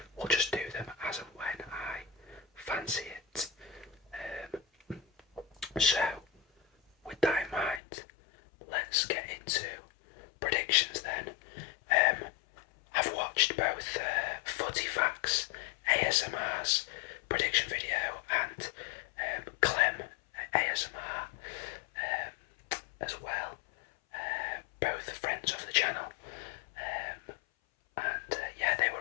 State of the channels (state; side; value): drops out; right; at 7.8 s